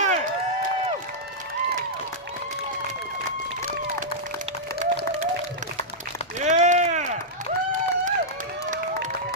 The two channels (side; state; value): both; normal; correlation -0.09